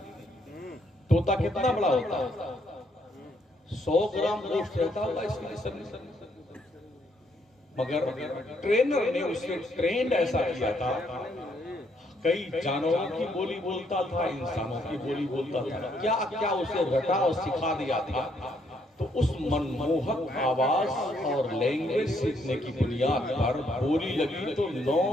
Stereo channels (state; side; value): normal; both; correlation 0.72